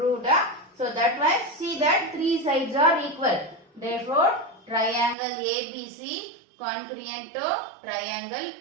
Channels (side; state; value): left; drops out; at 5.2 s